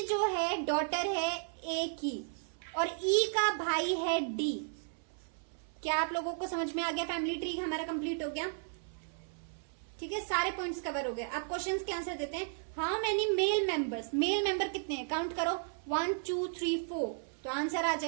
जो है डॉटर है ए की और ई का भाई है डी। क्या आप लोगों को समझ में आ गया? फैमिली ट्री हमारा कंप्लीट हो गया, ठीक है। सारे पॉइंट्स कवर हो गए। अब क्वेश्चंस के आंसर देते हैं। How many male members? Male member कितने हैं? काउंट करो, 1 2 3 4, तो आंसर आ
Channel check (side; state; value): left; silent; 55 dB below the other